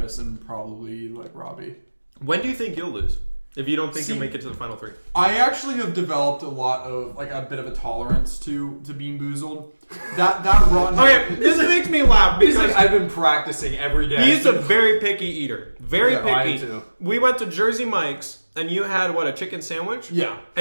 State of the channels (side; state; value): both; inverted; correlation -1.00